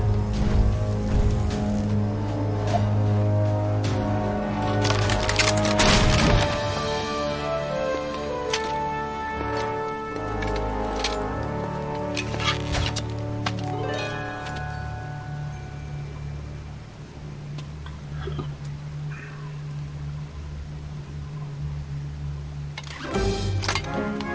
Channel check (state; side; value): identical; both; correlation 1.00